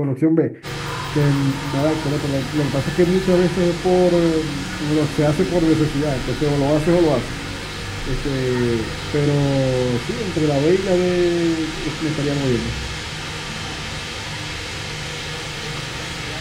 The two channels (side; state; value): both; identical; correlation 1.00